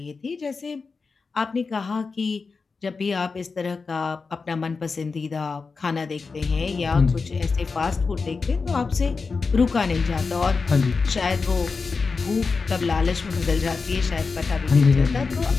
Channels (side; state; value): right; quieter; 4.6 dB